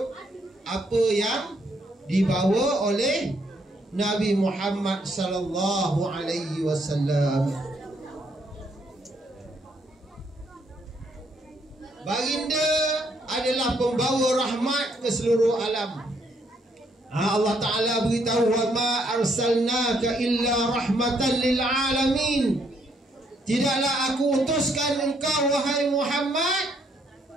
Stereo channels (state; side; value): normal; both; correlation 0.71